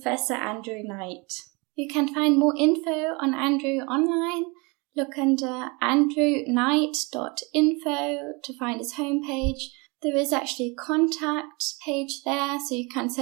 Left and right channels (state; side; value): quieter; left; 28.4 dB